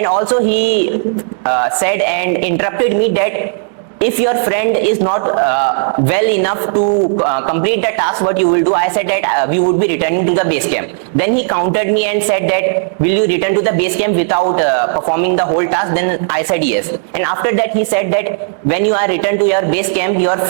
also he said and interrupted me that if your friend is not well enough to complete the task, what you will do? I said that we would be returning to the base camp. Then he countered me and said that, will you return to the base camp without performing the whole task? Then I said yes. And after that, he said that when you are returned to your base camp, your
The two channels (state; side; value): silent; left; digital silence